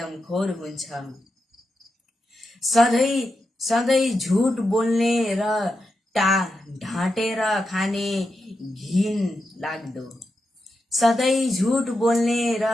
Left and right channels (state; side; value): normal; both; correlation 0.88